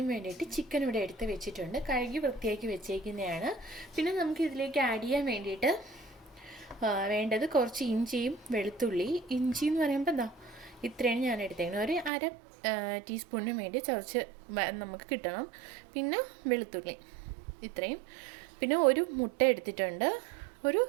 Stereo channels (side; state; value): left; drops out; at 12.1 s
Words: വേണ്ടിയിട്ട് ചിക്കൻ ഇവിടെ എടുത്ത് വെച്ചിട്ടുണ്ട്. കഴുകി വൃത്തിയാക്കി വെച്ചേക്കുന്നതാണ്. പിന്നെ നമുക്ക് ഇതിലേക്ക് ആഡ് ചെയ്യാൻ വേണ്ടിയിട്ട് വേണ്ടത് കുറച്ച് ഇഞ്ചിയും വെളുത്തുള്ളി. ഇഞ്ചി എന്ന് പറയുമ്പോൾ എന്താ ഇത്രയാണ് ഞാൻ എടുത്തേക്കുന്നത്. ഒരു അര ടീസ്പൂണിന് വേണ്ടി ചതച്ച് നമുക്ക് കിട്ടണം. പിന്നെ വെളുത്തുള്ളി ഇത്രയും. പിന്നെ ഒരു മുട്ട എടുത്തിട്ടുണ്ട്. ഒരു